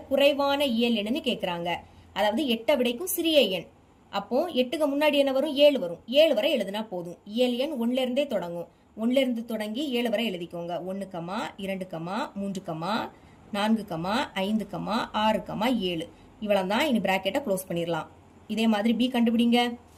குறைவான இயல் எண்ணுன்னு கேக்குறாங்க. அதாவது 8ஐ விடைக்கும் சிறிய எண். அப்போ 8க்கு முன்னாடி என்ன வரும்? 7 வரும். 7 வரை எழுதுனா போதும். இயல் எண் 1ல இருந்தே தொடங்கும். 1ல இருந்து தொடங்கி 7 வரை எழுதிக்கோங்க. 1, 2, 3, 4, 5, 6, 7 இவ்வளவு தான். இனி பிராக்கெட்டை க்ளோஸ் பண்ணிடலாம். இதே மாதிரி பி கண்டுபிடிங்க.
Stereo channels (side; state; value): both; identical; correlation 1.00